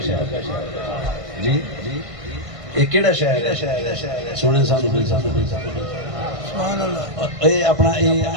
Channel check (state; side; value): late; left; 1.6 ms